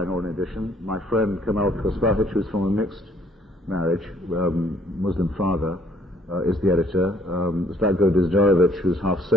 or an edition. My friend Kamal Kospahic, who's from a mixed marriage, Muslim father, is the editor. Zlatko Dizdarevic, who's half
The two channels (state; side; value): normal; both; correlation 0.62